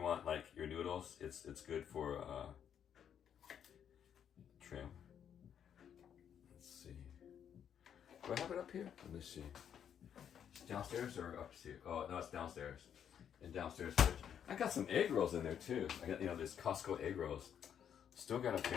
like your noodles, it's good for trim. Let's see. Do I have it up here? Let me see. It's downstairs or upstairs? Oh no, it's downstairs. In downstairs fridge. I got some egg rolls in there too. I got, you know, this Costco egg rolls. Still gotta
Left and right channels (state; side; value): quieter; right; 8.7 dB